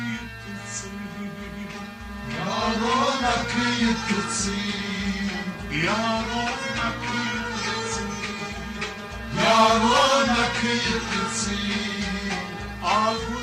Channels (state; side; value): identical; both; correlation 1.00